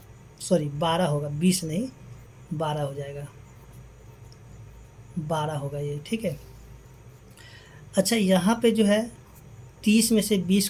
सॉरी 12 होगा, 20 नहीं 12 हो जाएगा, 12 होगा ये, ठीक है। अच्छा यहाँ पे जो है 30 में से 20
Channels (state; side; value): identical; both; correlation 1.00